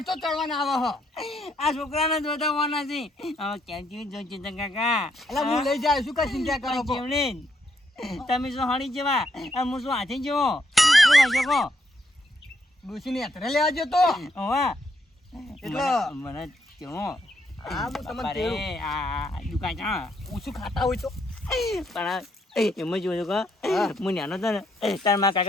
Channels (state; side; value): normal; both; correlation 0.75